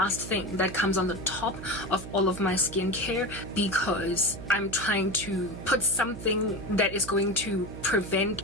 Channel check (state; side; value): noise; right; hum, 11 dB below the sound